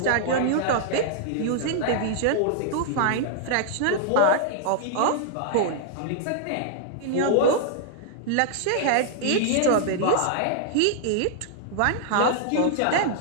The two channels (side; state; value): both; different; correlation -0.01